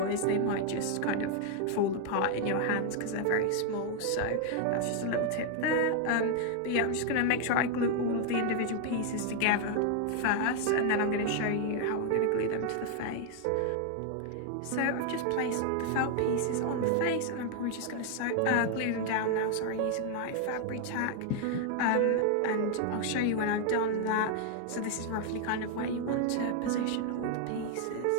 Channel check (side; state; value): both; different; correlation 0.00